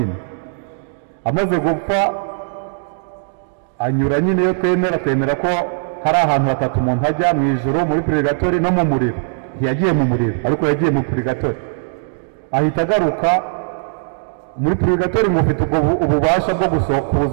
Amaze gupfa anyura nyine, yo twemera ko hari ahantu hatatu umuntu ajya mu ijuru, muri purigatori no mu muriro. Ntiyagiye mu muriro, ariko yagiye mu purigatori. Ahita agaruka muri purigatori, mufite ububasha bwo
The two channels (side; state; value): left; silent; digital silence